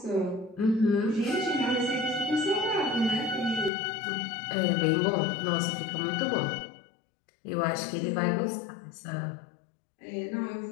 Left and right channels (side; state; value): right; drops out; at 3.7 s